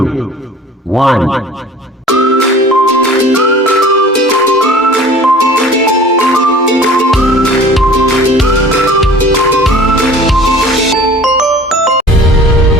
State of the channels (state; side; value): normal; both; correlation 0.46